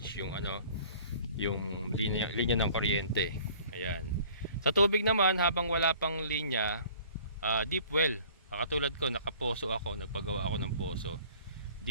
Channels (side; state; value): both; inverted; correlation -0.50